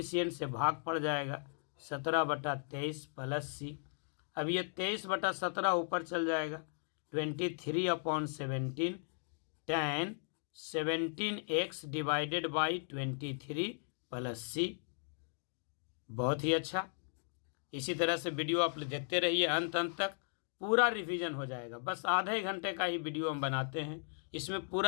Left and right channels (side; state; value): right; silent; digital silence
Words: से भाग पड़ जाएगा 17/23 प्लस सी। अब ये 23/17 ऊपर चल जाएगा 23/17 tan 17x divided by 23 plus C. बहुत ही अच्छा। इसी तरह से वीडियो आप देखते रहिए अंत तक, पूरा रिवीजन हो जाएगा। बस आधे घंटे का ही वीडियो हम बनाते हैं, इसमें